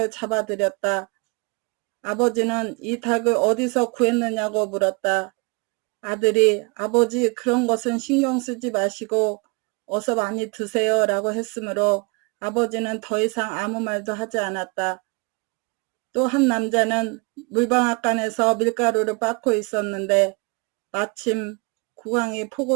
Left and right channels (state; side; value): quieter; left; 28.9 dB